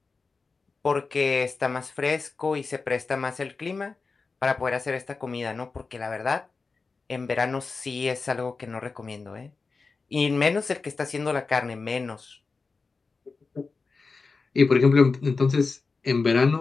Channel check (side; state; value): right; quieter; 4.3 dB